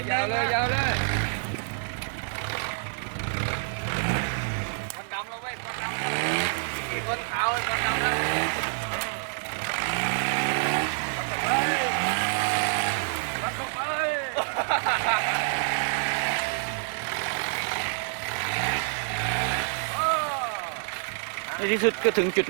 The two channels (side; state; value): left; silent; digital silence